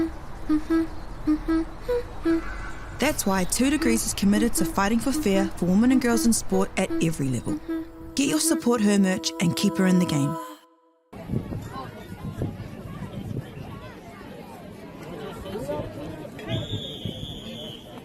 That's why 2 Degrees is committed to fighting for fair for women and girls in sport at every level. Get your Support Her merch and keep her in the game.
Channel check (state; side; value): identical; both; correlation 1.00